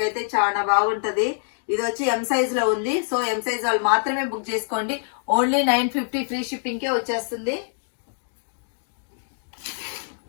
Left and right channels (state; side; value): silent; right; digital silence